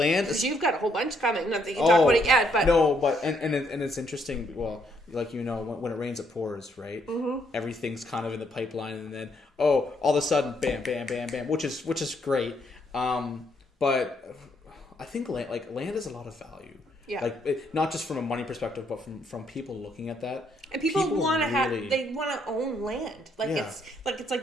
is... You've got a whole bunch coming. Not that you can talk about it yet, but... No, but... And it's interesting. Well, like, when it rains, it pours, right? Mm-hmm. Everything's kind of in the pipeline, and then, all of a sudden, bam, bam, bam, bam, which is great. But I think land has a lot of value. Yeah. Like, not just from a money perspective, but from people looking at that. And people want to they want to own land. Like, it's like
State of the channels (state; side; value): normal; both; correlation 0.72